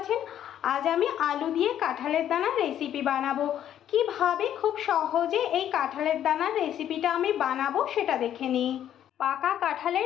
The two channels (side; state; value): right; quieter; 10.6 dB